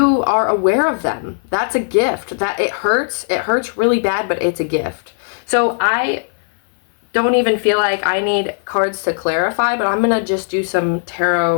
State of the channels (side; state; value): right; silent; 59 dB below the other